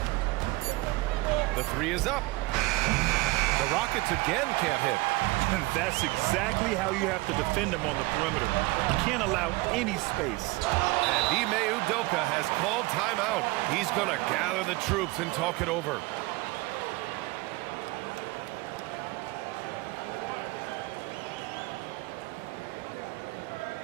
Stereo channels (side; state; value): left; quieter; 22.2 dB